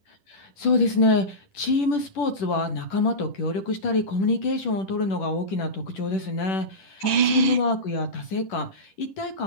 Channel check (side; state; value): right; late; 10 ms